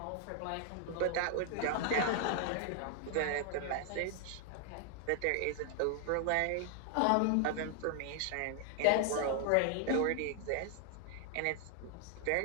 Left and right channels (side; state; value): both; different; correlation 0.00